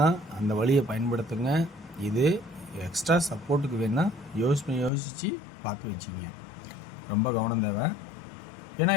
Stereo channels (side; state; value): right; drops out; at 4.9 s